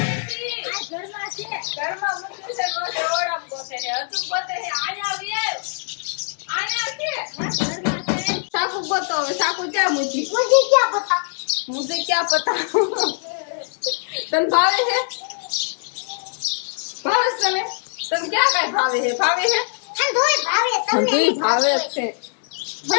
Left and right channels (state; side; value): silent; right; 64 dB below the other